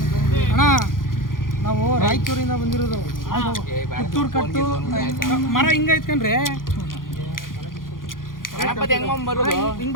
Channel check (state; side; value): late; right; 0.90 ms